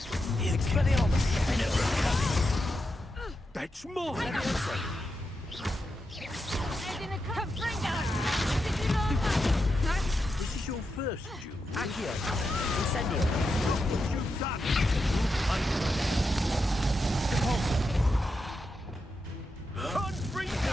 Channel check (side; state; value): both; normal; correlation 0.86